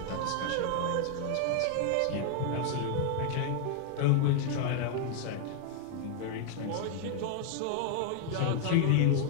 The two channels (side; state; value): both; different; correlation 0.00